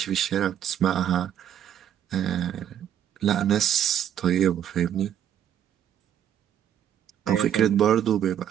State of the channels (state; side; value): quieter; left; 10.0 dB